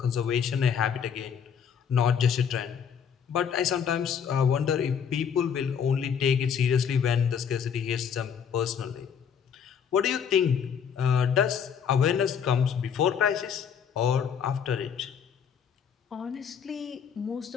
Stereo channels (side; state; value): right; quieter; 7.5 dB